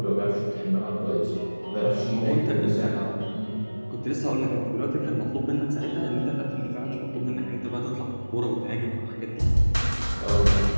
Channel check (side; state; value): both; inverted; correlation -1.00